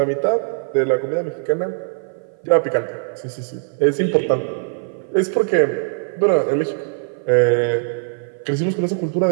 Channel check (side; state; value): left; silent; 55 dB below the other